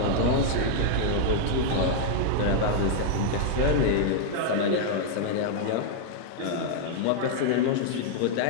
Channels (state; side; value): different; both; correlation -0.01